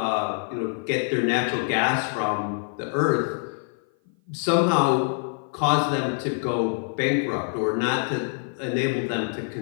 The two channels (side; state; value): right; silent; 55 dB below the other